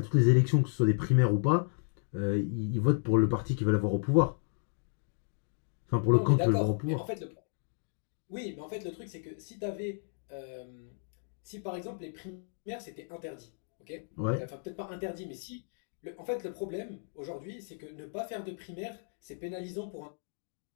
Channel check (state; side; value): silent; right; digital silence